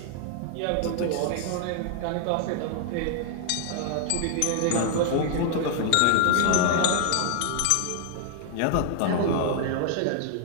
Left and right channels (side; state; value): both; different; correlation 0.00